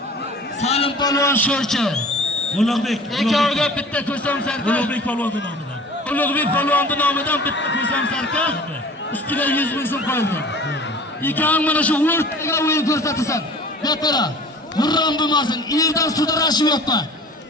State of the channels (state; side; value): normal; both; correlation 0.43